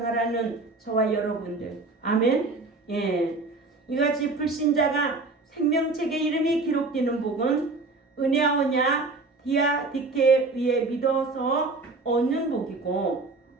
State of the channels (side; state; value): left; quieter; 3.5 dB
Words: 저와 여러분들. 아멘. 이같이 불신자가 생명책에 이름이 기록되는 복은 은혜하오냐 디아디케에 의해 믿어서 얻는 복이고